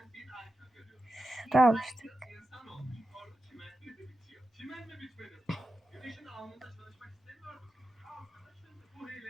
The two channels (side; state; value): both; normal; correlation 0.92